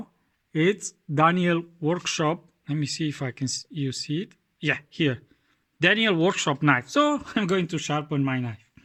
it's Daniel Workshop. Let me see if I can you see it. Yeah, here, Daniel Workshop knife. So I'm going to sharpen my knife.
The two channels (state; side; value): identical; both; correlation 1.00